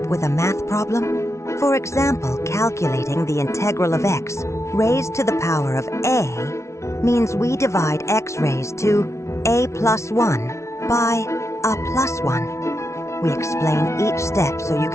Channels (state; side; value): late; right; 0.13 ms